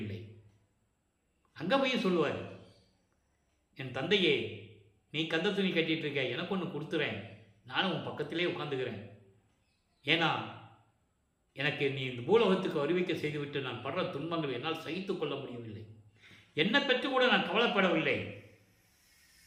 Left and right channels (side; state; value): both; identical; correlation 1.00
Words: இல்லை. அங்கே போய் சொல்லுவார், என் தந்தையே, நீ கந்த துணி கட்டிட்டு இருக்க, எனக்கு ஒன்று கொடுத்துறேன், நானும் உன் பக்கத்திலே உட்காந்துக்கிறேன். ஏன்னா எனக்கு நீ இந்த பூலோகத்துக்கு அறிவிக்க செய்துவிட்டு நான் படுற துன்பங்கள் என்னால் சகித்து கொள்ள முடியவில்லை. என்னை பற்றி கூட நான் கவலைப்படவில்லை.